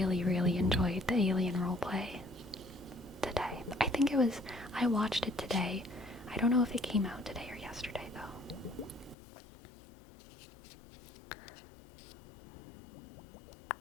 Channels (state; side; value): drops out; right; at 9.2 s